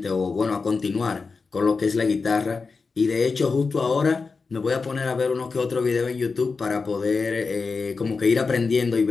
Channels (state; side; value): quieter; right; 4.5 dB